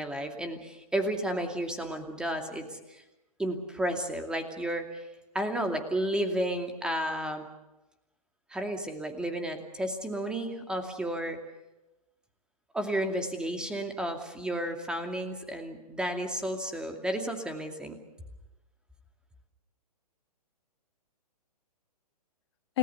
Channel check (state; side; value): normal; both; correlation 0.58